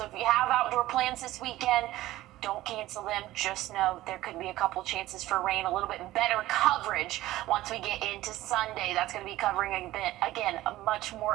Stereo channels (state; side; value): quieter; left; 16.0 dB